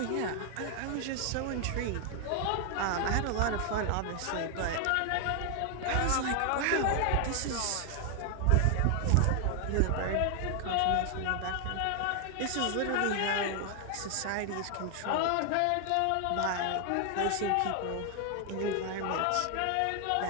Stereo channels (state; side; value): different; both; correlation 0.00